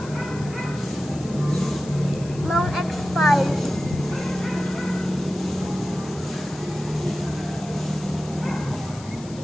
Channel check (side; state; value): left; noise; hiss, 19 dB below the sound